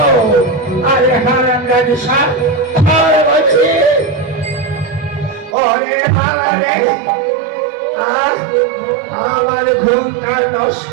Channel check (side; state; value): left; drops out; at 5.6 s